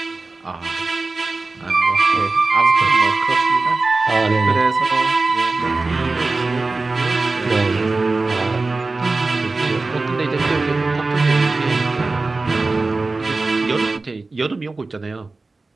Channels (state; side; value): quieter; left; 3.5 dB